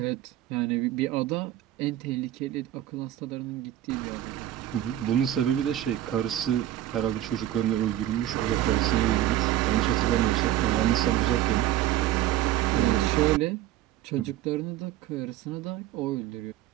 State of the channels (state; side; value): quieter; left; 13.0 dB